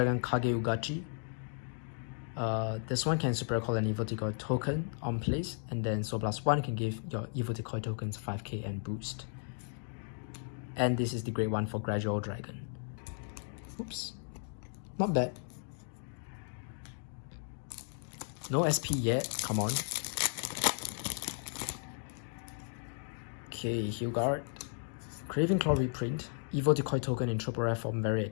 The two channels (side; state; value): right; silent; 54 dB below the other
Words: Kage Ugachi. This one can super call an Evil Decoy token on place, and then Soul Blast 1 can give your Evil Decoy tokens 5k and boost. And this is the great one for Gradual Dragon. Oops. Not bad. No SP yet, come on. Okay, Hugart. Craving Claw reprint. Evil Decoy token in triple rare form, very